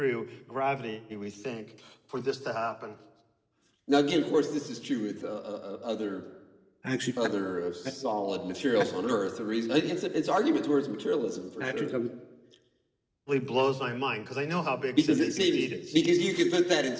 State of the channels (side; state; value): both; identical; correlation 1.00